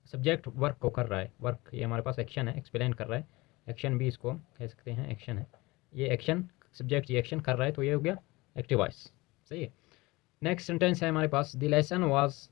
सब्जेक्ट वर्क को कर रहा है, वर्क ये हमारे पास एक्शन है, एक्सप्लेन कर रहा है, एक्शन भी इसको कह सकते हैं, एक्शन है ये, एक्शन सब्जेक्ट ये एक्शन कर रहा है, तो ये हो गया एक्टिव वॉइस, सही है। नेक्स्ट सेंटेंस है हमारे पास the lesson was,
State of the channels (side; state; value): right; quieter; 22.1 dB